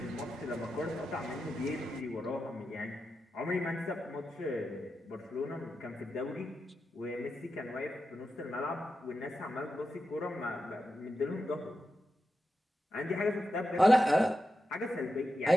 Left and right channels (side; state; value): both; normal; correlation 0.89